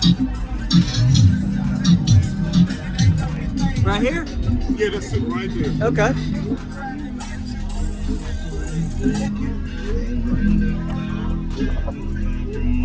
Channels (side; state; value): both; identical; correlation 1.00